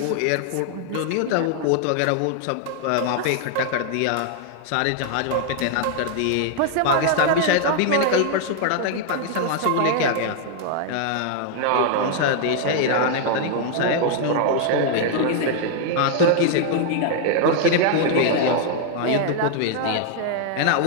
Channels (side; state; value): both; different; correlation 0.00